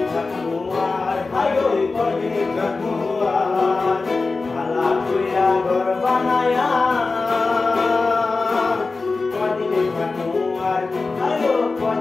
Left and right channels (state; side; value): quieter; right; 3.9 dB